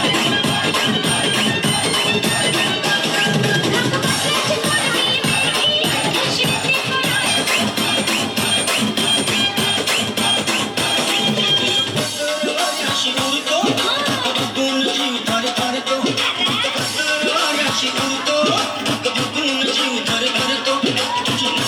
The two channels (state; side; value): identical; both; correlation 1.00